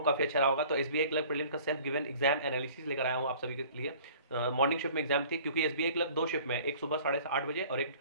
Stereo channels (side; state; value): both; inverted; correlation -0.49